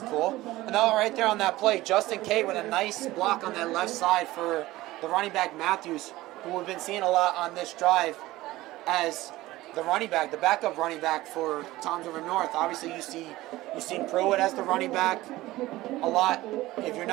And now right there on that play, Justin Kate with a nice block on that left side for the running back Matthews, who we've been seeing a lot on this drive as the running back, the backup running back for Toms River North. Obviously, you've seen Pruitt as the running back a lot. If you're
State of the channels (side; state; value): left; quieter; 17.6 dB